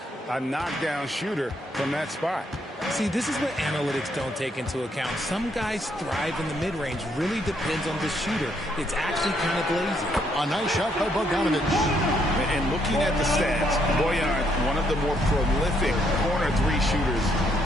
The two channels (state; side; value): normal; both; correlation 0.72